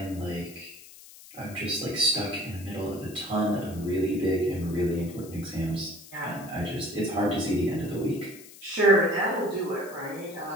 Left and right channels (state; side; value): noise; left; hiss, 19 dB below the sound